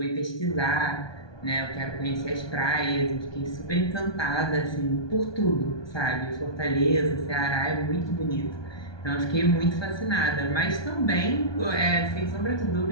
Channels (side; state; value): right; late; 1.2 ms